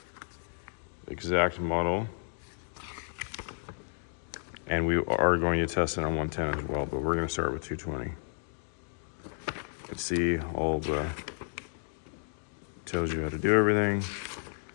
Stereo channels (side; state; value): right; silent; digital silence